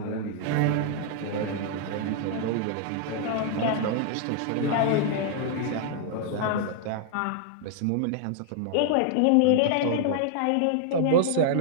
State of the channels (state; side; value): different; both; correlation 0.00